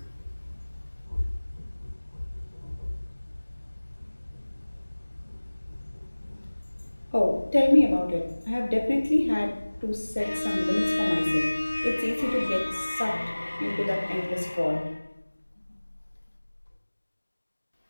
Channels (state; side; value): inverted; both; correlation -1.00